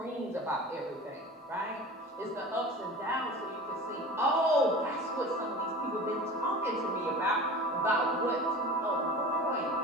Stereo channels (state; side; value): normal; both; correlation 0.36